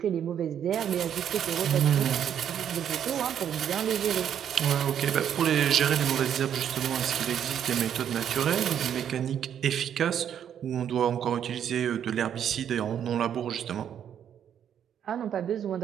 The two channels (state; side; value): quieter; left; 9.2 dB